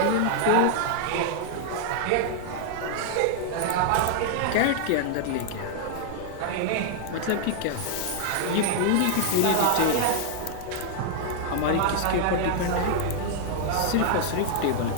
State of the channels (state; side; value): different; both; correlation 0.00